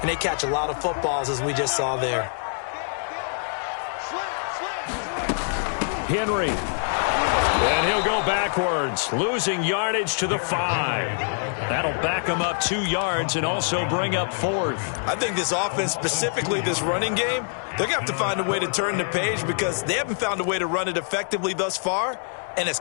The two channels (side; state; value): right; silent; digital silence